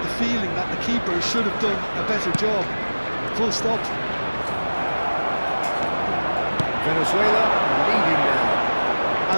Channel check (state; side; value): inverted; both; correlation -1.00